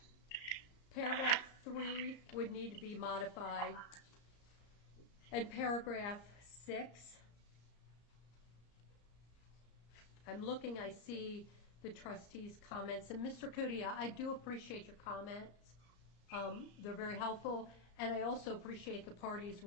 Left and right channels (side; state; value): right; late; 34 ms